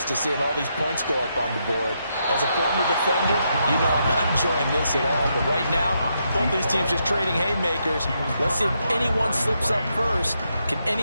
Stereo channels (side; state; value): both; inverted; correlation -0.80